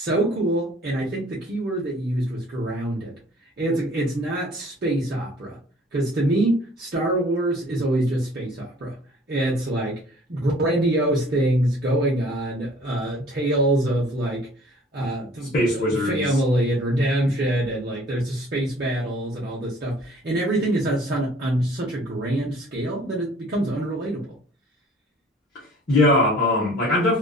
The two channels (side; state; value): both; normal; correlation 0.52